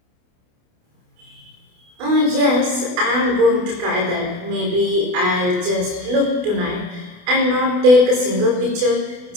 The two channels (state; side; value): late; left; 28 ms